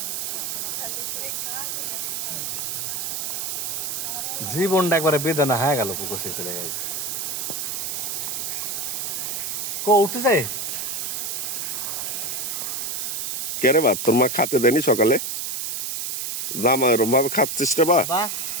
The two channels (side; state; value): right; noise; hiss, 2 dB below the sound